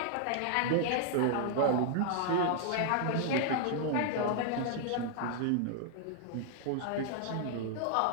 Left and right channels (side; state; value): both; different; correlation 0.00